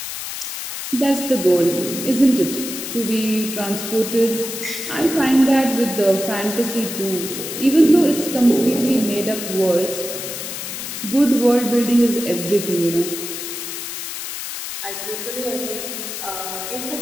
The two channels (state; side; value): noise; left; hiss, 7 dB below the sound